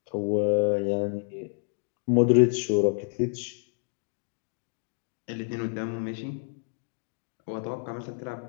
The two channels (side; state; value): right; silent; 59 dB below the other